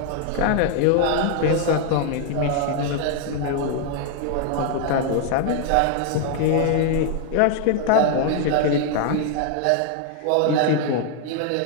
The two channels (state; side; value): different; both; correlation 0.00